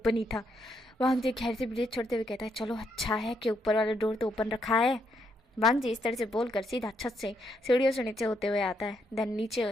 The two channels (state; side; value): normal; both; correlation 0.76